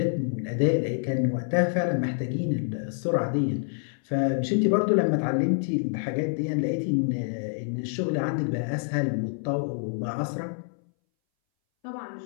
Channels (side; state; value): right; silent; 60 dB below the other